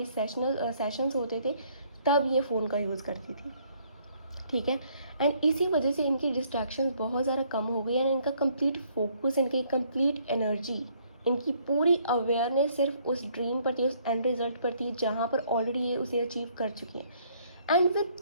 सेशंस होते थे तब ये फ़ोन का यूज़ करती थी, ठीक है। एंड इसी वजह से इनकी डिस्ट्रैक्शंस बहुत ज़्यादा कम हो गई, एंड इनका कंप्लीट फोकस, इनकी कंप्लीट एनर्जी, इनकी पूरी अवेयरनेस सिर्फ उस ड्रीम पर थी, उस एंड रिजल्ट पर थी, जहाँ पर ऑलरेडी ये उसे अचीव कर चुकी हैं। एंड विद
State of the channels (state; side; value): inverted; both; correlation -0.65